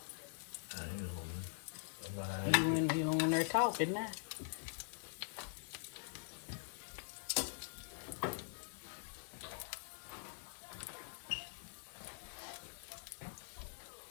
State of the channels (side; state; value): right; silent; digital silence